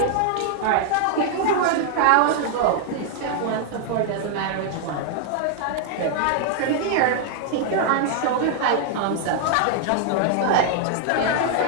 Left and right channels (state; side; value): different; both; correlation 0.00